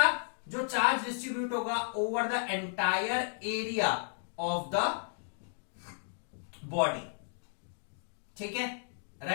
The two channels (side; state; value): right; silent; digital silence